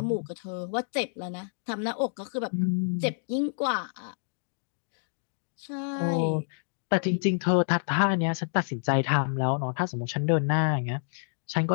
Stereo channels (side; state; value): right; silent; digital silence